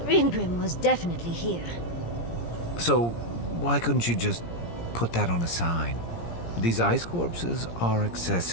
Ringrim was definitely here. So, why couldn't you just put that on a sign? These ice corpses are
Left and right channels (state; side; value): late; right; 17 ms